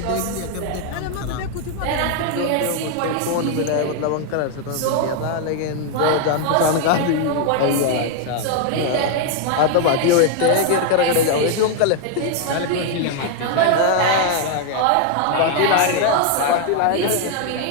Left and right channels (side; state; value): both; different; correlation 0.00